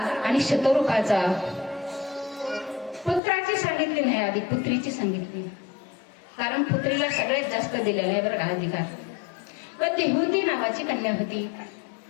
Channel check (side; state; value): right; drops out; at 3.2 s